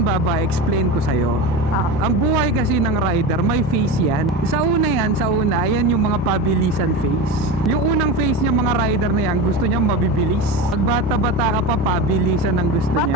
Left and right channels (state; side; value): normal; both; correlation 0.24